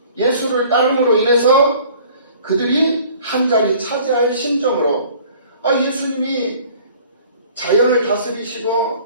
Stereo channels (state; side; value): inverted; both; correlation -0.52